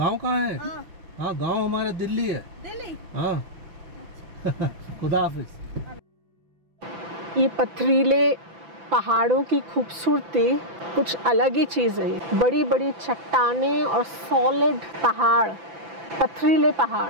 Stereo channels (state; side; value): late; left; 5.9 ms